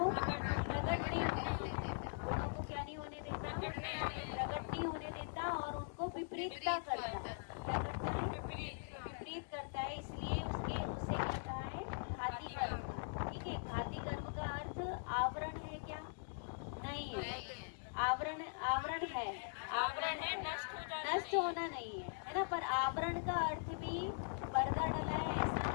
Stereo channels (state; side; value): silent; right; digital silence